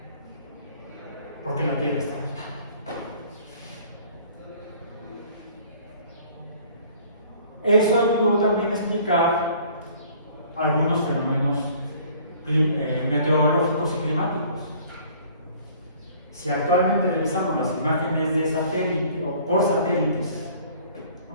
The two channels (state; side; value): inverted; both; correlation -0.53